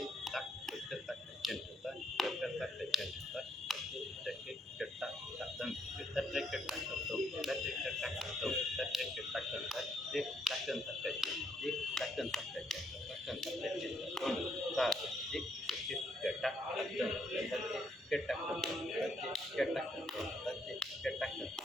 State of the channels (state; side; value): normal; both; correlation 0.73